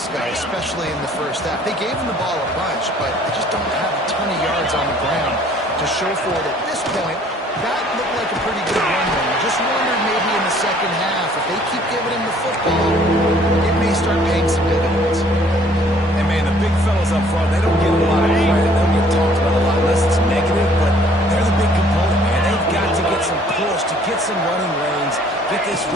guy, especially in the first half. They gave him the ball a bunch, but they just don't have a ton of yards on the ground to show for it at this point. That looked like a pretty good run there. I just wondered maybe in the second half, if they keep giving him the football, it may start paying some dividends. And man, the big fellas up front, they don't get a lot of credit. They don't get talked about a lot unless it's negative, but they're the big component, man. They've got to get some push, to get some running lanes, get this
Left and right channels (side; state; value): both; normal; correlation 0.58